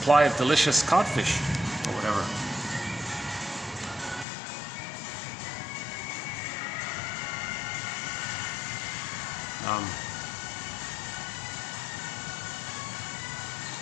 of delicious codfish or whatever.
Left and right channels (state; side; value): drops out; right; at 4.2 s